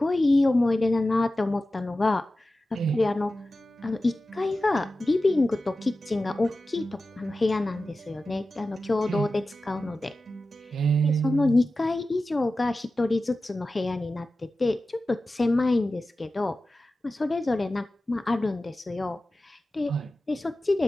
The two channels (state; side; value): normal; both; correlation 0.94